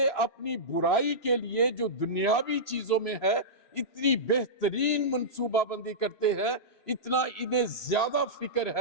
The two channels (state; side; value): late; right; 3.0 ms